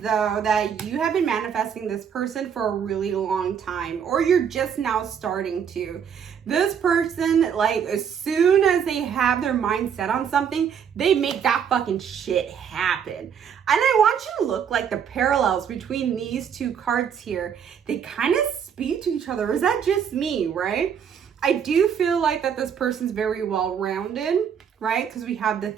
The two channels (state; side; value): quieter; left; 7.8 dB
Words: that you have been manifesting this person for a really long time, or you're just now starting to. This person, like, as soon as they have their mind set on something, they make that fucking shit happen. And I want you to look like the parallels between these two cards here. They kind of speak to each other. Is that just me, right? I do feel like that this person's very well-rounded, right? Because we have the